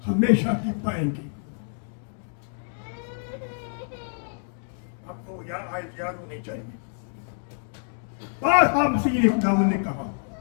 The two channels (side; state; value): right; silent; digital silence